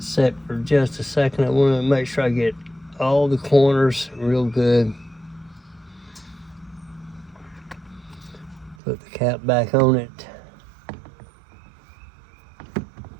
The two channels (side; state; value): left; drops out; at 8.8 s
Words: set for just a second. I want to make sure I get all the corners real good. Put the cap back on it.